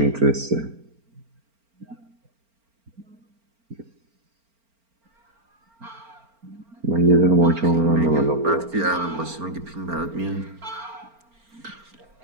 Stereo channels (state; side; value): late; left; 4.4 ms